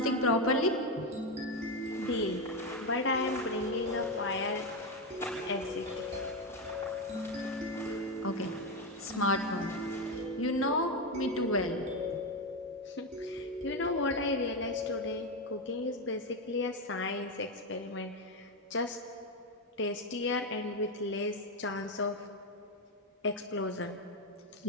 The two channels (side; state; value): both; normal; correlation 0.10